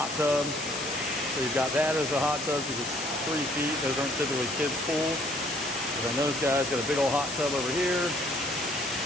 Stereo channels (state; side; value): noise; left; hiss, 7 dB below the sound